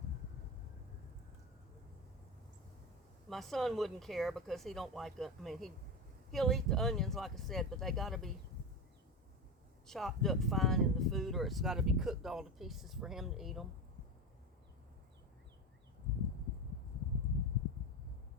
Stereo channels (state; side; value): normal; both; correlation 0.19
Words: My son wouldn't care because he don't like it. I mean, he'll eat the onions, like I said, but they got to be chopped up fine in the food, or it's got to be cooked all to pieces for him to eat them.